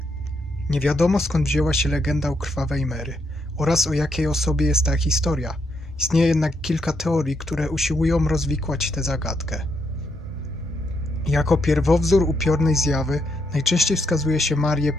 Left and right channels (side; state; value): both; normal; correlation 0.78